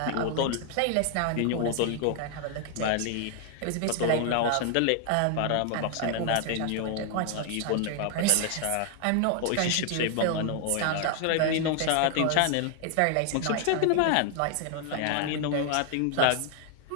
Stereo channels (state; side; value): different; both; correlation 0.00